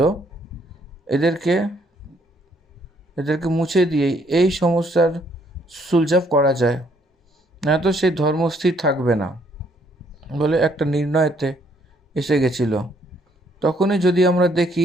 এদেরকে মুছে দিয়েই এই সমস্যার সুলঝাব করা যায়, না তো সেই ধর্ম স্থির থাকবে না বলে একটা নির্ণয়তে এসে গেছিল। তখনই যদি আমরা দেখি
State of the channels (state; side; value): normal; both; correlation 0.67